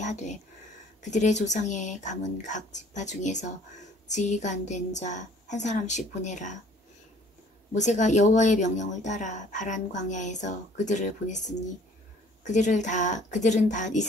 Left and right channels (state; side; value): normal; both; correlation 0.55